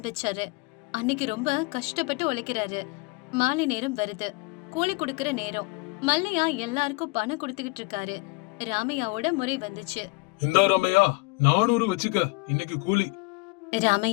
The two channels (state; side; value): quieter; right; 26.3 dB